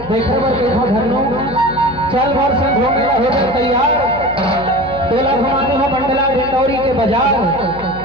देखे बर देखो धनो चल भर से घूमे हो गए तैयार। तेला घुमाने हो मंडला डिंडौरी के बाजार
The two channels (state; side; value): noise; left; hum, 16 dB below the sound